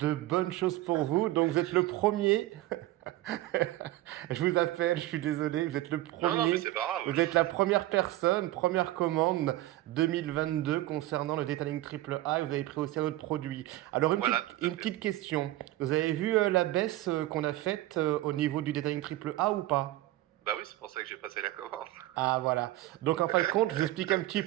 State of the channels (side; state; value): left; quieter; 16.3 dB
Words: bonnes choses pour vous. Donc vous êtes le premier, je vous appelle, je suis désolé, vous êtes le Non, non, mais premier, c'est pas grave. vous êtes la première personne, première commande 2022 concernant le Detailing Triple A et vous avez pris aussi un autre produit. Alors Voilà, tout à une fait. petite question, vous avez vu la baisse qu'on a faite au niveau du Detailing Triple A ou pas? Bah oui, c'est pour ça que j'ai passé la commande. Ah voilà. Donc en fin de compte, je vous explique un petit